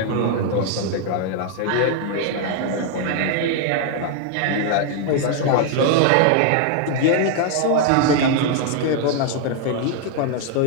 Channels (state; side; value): different; both; correlation 0.00